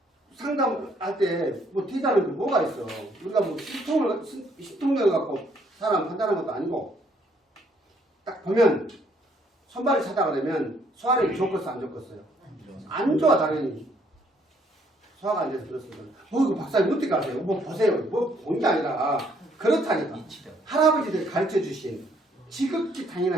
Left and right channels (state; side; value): normal; both; correlation 0.67